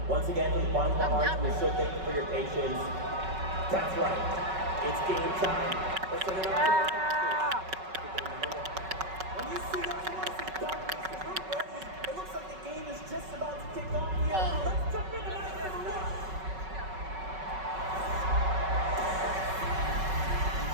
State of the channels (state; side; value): late; left; 5.3 ms